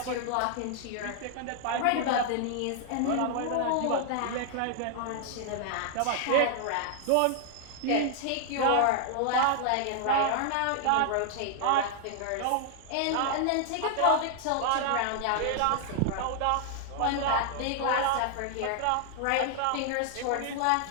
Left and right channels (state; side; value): different; both; correlation 0.00